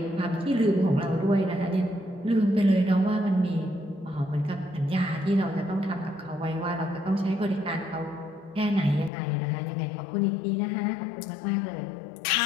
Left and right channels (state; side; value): drops out; right; at 9.1 s